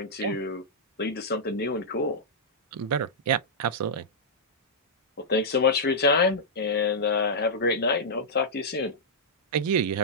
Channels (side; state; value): both; normal; correlation -0.11